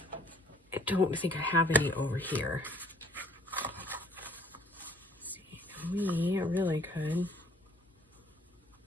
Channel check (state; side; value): normal; both; correlation 0.58